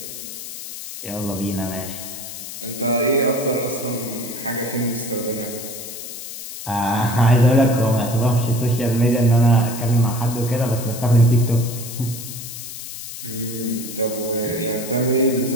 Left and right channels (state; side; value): noise; left; hiss, 10 dB below the sound